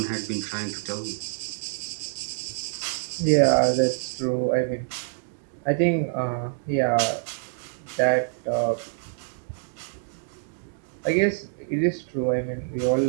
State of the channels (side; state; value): left; silent; digital silence